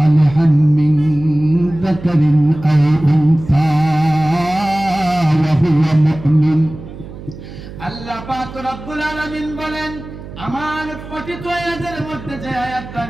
মিন যাকারিন আও উনসা ওয়া হুয়া মুমিন। আল্লাহ পাক রব্বুল আলামিন বলেন আমার পঠিত আয়াতের মধ্যে যে আয়াতটা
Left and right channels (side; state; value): right; noise; hum, 14 dB below the sound